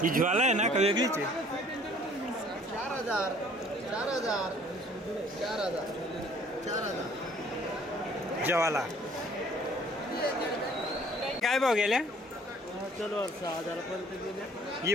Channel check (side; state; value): both; normal; correlation 0.56